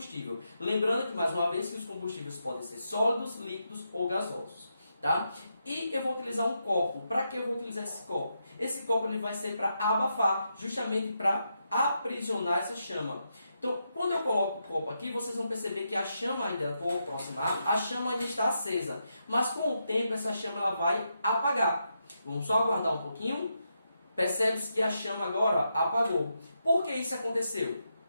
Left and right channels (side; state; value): both; inverted; correlation -0.84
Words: Lembrando que, mais uma vez, que os combustíveis podem ser sólidos, líquidos ou gasosos. Tá? E eu vou utilizar um copo. Para que eu vou utilizar esse copo? Esse copo ele vai ser para abafar, justamente para aprisionar essa chama. Então, quando eu coloco o copo aqui, vocês vão perceber que a chama ainda, vou aproximar, a chama ainda está acesa. Mas com o tempo, essa chama ela vai apagar. Vamos só aguardar um pouquinho. Percebe-se que a chama agora apagou. Por que isso aconteceu?